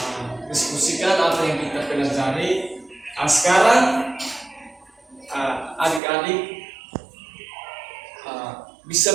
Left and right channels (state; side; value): drops out; left; at 6.0 s